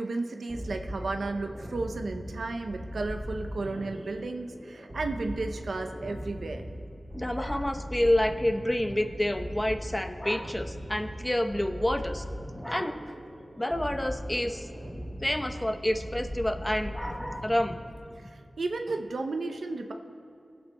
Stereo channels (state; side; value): normal; both; correlation 0.97